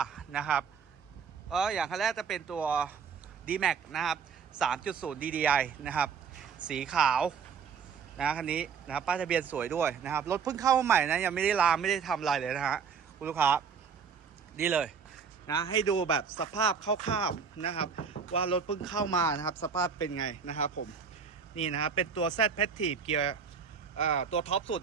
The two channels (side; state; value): left; quieter; 6.3 dB